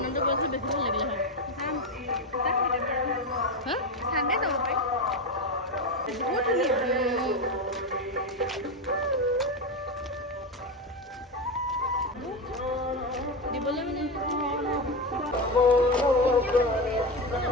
গৈছোঁ বেছি ভাল লাগিলে হয়। চানডে যাব পাৰি। বহুত ধুনীয়া। দিবলৈ মানে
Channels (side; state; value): both; normal; correlation 0.15